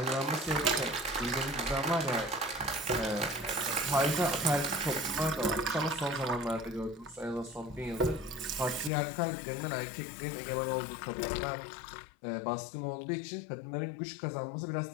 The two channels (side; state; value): right; drops out; at 8.9 s